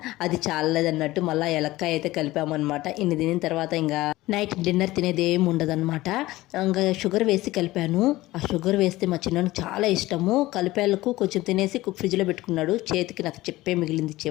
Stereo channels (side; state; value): right; quieter; 17.8 dB